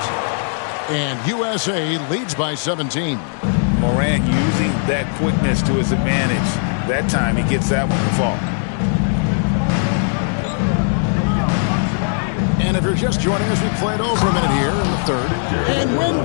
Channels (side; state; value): right; silent; 67 dB below the other